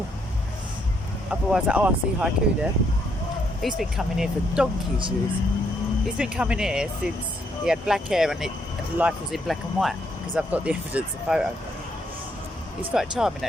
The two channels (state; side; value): normal; both; correlation 0.73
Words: Otherwise, I see Haiku there. He's been coming here for donkey's years. He's been coming here since he had black hair and life was in black and white, because I've got the evidence of photo. He's quite charming